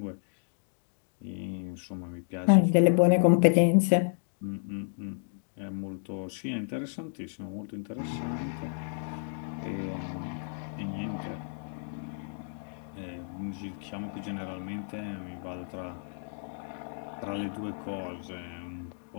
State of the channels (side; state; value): right; silent; digital silence